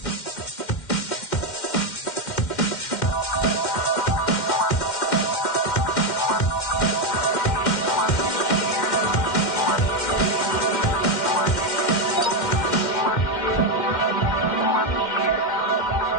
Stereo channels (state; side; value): late; right; 2.1 ms